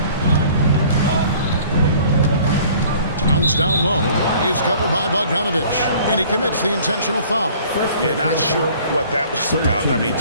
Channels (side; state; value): both; inverted; correlation -0.52